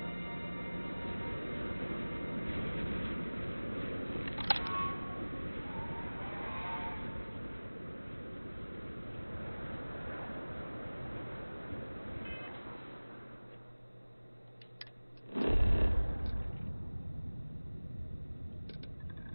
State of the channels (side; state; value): both; inverted; correlation -1.00